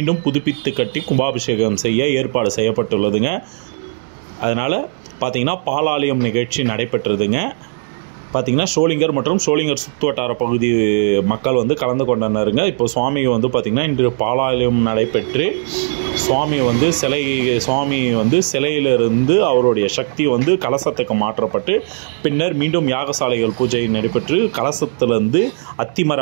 புதுப்பித்து கட்டி கும்பாபிஷேகம் செய்ய ஏற்பாடு செய்யப்பட்டுள்ளதுங்க. அதனால் பார்த்திங்கன்னா பாலாலயம் நிகழ்ச்சி நடைபெற்றதுங்க. பார்த்திங்கன்னா சோளிங்கர் மற்றும் சோளிங்கர் சுற்றுவட்டார பகுதி மக்கள் வந்து கலந்து கொண்டனருங்க. இப்போ சுவாமி வந்து பார்த்திங்கன்னா இன்று பாலாலயம் நடைபெற்று சுவாமி வந்து சிலையிலிருந்து அவருடைய சக்தி வந்து கலசத்துக்கு மாற்றப்பட்டு பின்னர் மீண்டும் யாகசாலைகள் பூஜை நடைபெற்று கலசத்திலிருந்து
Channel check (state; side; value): silent; left; digital silence